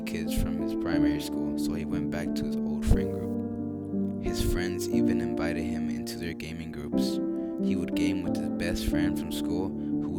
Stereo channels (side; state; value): both; identical; correlation 1.00